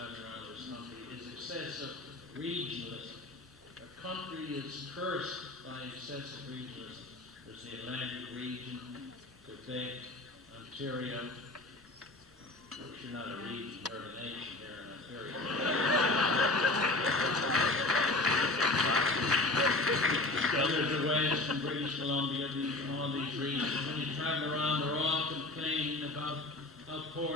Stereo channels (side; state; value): right; quieter; 3.0 dB